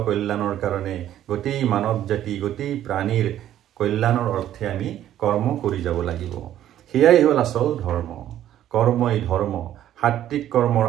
কল্যাণৰ কাৰণে গোটেই মানৱ জাতি, গোটেই প্ৰাণীৰ কল্যাণৰ অৰ্থে আমি কৰ্ম কৰি যাব লাগিব। সেয়াই হ'ল আচল ধৰ্ম। কৰ্মই ধৰ্ম। সাত্বিক কৰ্মৰ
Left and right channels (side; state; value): left; quieter; 11.9 dB